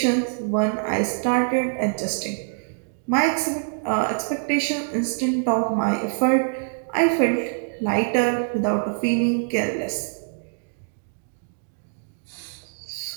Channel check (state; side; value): silent; left; digital silence